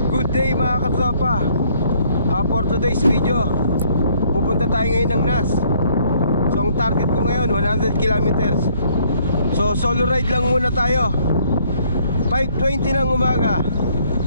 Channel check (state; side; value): inverted; both; correlation -0.64